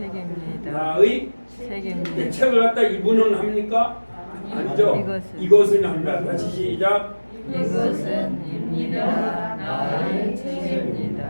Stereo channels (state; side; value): inverted; both; correlation -1.00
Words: 나의 책임입니다. 책을 갖다 이분은 합니까? 아니죠. 이것은 합니다. 다시 시작. 이것은 입니다. 나의